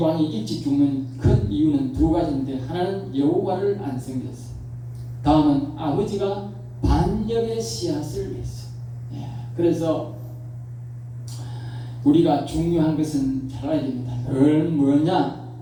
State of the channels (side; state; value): both; identical; correlation 1.00